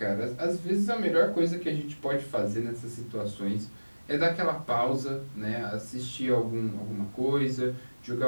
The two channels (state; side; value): inverted; both; correlation -1.00